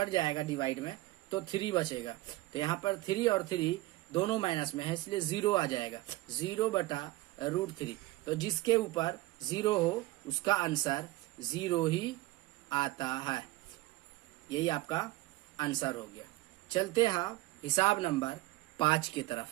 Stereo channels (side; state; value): left; quieter; 18.8 dB